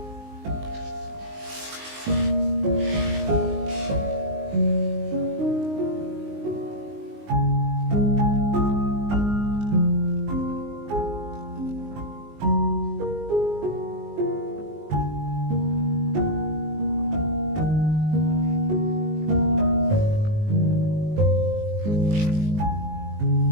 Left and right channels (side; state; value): left; late; 19 ms